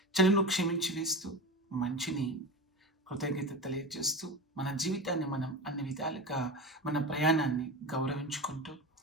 చెడును క్షమించి వేస్తూ మంచిని కృతజ్ఞత తెలియజేస్తూ మన జీవితాన్ని మనం అన్ని విధాలుగా మన ప్రయాణాన్ని గౌరవించుకుంటూ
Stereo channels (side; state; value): both; normal; correlation 0.25